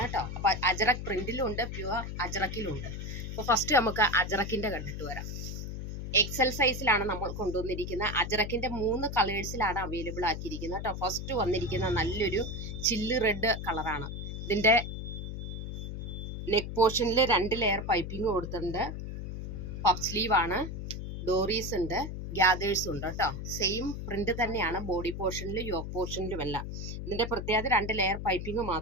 കേട്ടോ. അപ്പൊ അജറക് പ്രിന്റിലും ഉണ്ട്, പ്യുവർ അജറക്കിലും ഉണ്ട്. അപ്പോൾ ഫസ്റ്റ് നമുക്ക് അജറക്കിന്റെ കണ്ടിട്ട് വരാം. എക്സൽ സൈസിലാണ് നമ്മൾ കൊണ്ടുവന്നിരിക്കുന്നത്. അജറക്കിന്റെ 3 കളേഴ്സിലാണ് അവൈലബിൾ ആക്കിയിരിക്കുന്നത് കേട്ടോ. ഫസ്റ്റ് വന്നിരിക്കുന്ന നല്ലൊരു ചില്ല് റെഡ് കളറാണ്. ഇതിന്റെ നെക്ക് പോർഷനിൽ 2 ലെയർ പൈപ്പിംഗ് കൊടുത്തിട്ടുണ്ട്. പഫ് സ്ലീവ് ആണ്, ഡോറീസ് ഉണ്ട്, ഗ്യാദേഴ്സ് ഉണ്ട് കേട്ടോ. സെയിം പ്രിന്റ് തന്നെയാണ് ബോഡി പോർഷനിലും യോക്ക് പോർഷനിലും എല്ലാം. ഇതിന്റെ പ്രത്യേകത 2 ലെയർ പൈപ്പിംഗ്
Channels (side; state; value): left; noise; hum, 6 dB below the sound